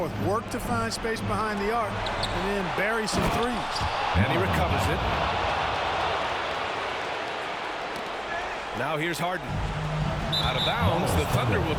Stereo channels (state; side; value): identical; both; correlation 1.00